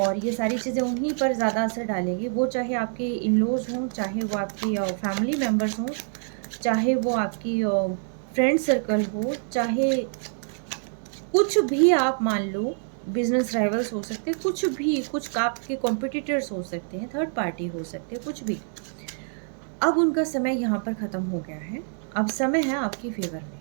ये सारी चीज़ें उन्हीं पर ज़्यादा असर डालेगी, वो चाहे आपके इन लॉज हों, चाहे वो आपकी फैमिली मेम्बर्स हों, चाहे वो आपकी फ्रेंड सर्कल हो, चाहे कुछ भी आप मान लो, बिजनेस राइवल्स हो सकते हैं, कुछ भी, कुछ आपके कॉम्पिटिटर्स हो सकते हैं, थर्ड पार्टी हो सकते हैं, कुछ भी। अब उनका समय यहाँ पर ख़त्म हो गया है, अब समय है आपकी फेवर में।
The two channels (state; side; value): silent; left; 61 dB below the other